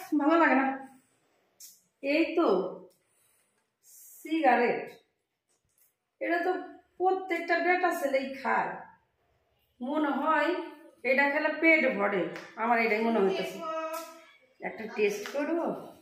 ভালো লাগে না। এই তো সিগারেট, এটা তো প্রত্যেকটা বেটা ছেলেই খায়। মনে হয় এটা খেলে পেট ভরে, আমার এটাই মনে হইতেছে। একটা টেস্ট করবো,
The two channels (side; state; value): both; identical; correlation 1.00